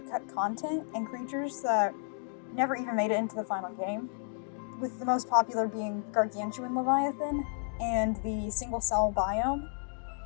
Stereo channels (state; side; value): silent; right; digital silence